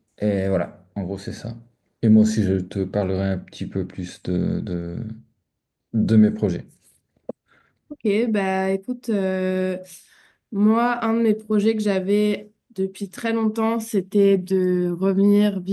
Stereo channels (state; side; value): identical; both; correlation 1.00